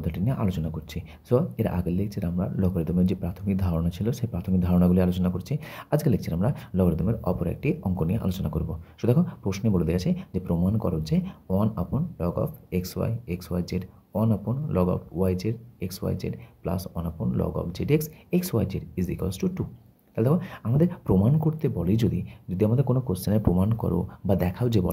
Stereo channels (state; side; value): identical; both; correlation 1.00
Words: নিয়ে আলোচনা করছি। সো এর আগের লেকচারে আমরা লগারিদমের যে প্রাথমিক ধারণা ছিল সেই প্রাথমিক ধারণাগুলি আলোচনা করছি। আজকের লেকচারে আমরা লগারিদমের অপর একটি অঙ্ক নিয়ে আলোচনা করব। সো দেখো প্রশ্নে বলে দেওয়া আছে যে প্রমাণ করো যে 1/log of xy log of yz xyz plus 1/log of zx xyz is equals to 2। তাহলে দেখো আমাদের প্রমাণ করতে বলে যদি আমাদের কোনো কোশ্চেনের প্রমাণ করো বা দেখাও যে